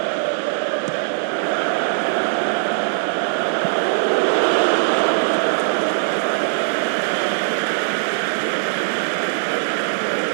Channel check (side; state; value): left; silent; digital silence